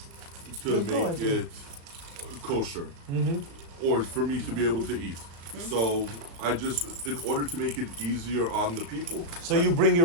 Good call, make actually. it kosher, or for me to be able to eat. So I just, in order to make it easier on the people, So you bring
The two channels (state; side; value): late; left; 35 ms